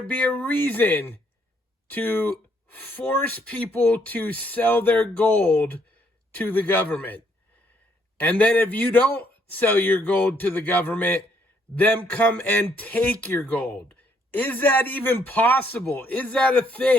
be a reason to force people to sell their gold to the government? And then if you don't sell your gold to the government, them come and take your gold. Is that even possible? Is that a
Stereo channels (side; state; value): both; normal; correlation 0.70